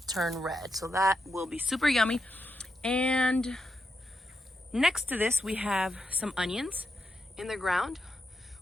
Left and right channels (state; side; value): normal; both; correlation 0.85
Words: turn red. So that will be super yummy. And next to this, we have some onions in the ground,